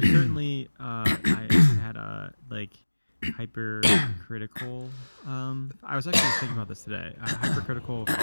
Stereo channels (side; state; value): both; inverted; correlation -1.00